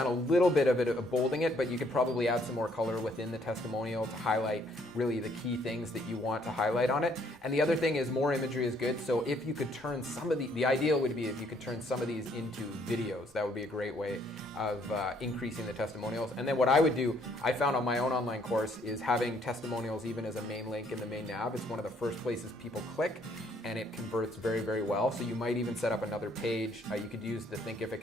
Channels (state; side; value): normal; both; correlation 0.66